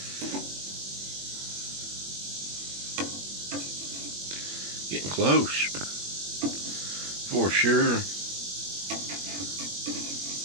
Getting close. For sure.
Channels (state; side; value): late; left; 21 ms